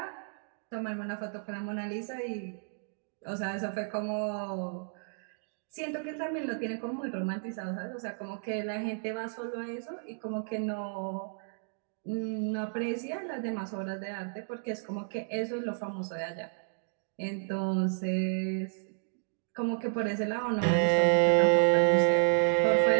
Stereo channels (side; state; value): left; silent; digital silence